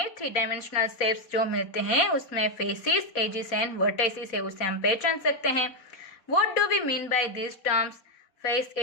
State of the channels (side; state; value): right; late; 3.7 ms